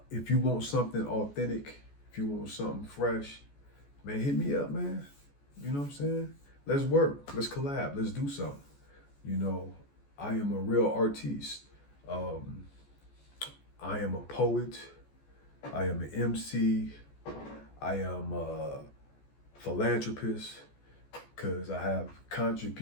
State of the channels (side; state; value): right; late; 14 ms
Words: If you want something authentic, if you want something fresh, man, hit me up, man. You know what I'm saying? Let's work. Let's collab. Let's do something. You know, I am a real artiste. Um, I am a poet. I am an MC. I am a philanthropist because I have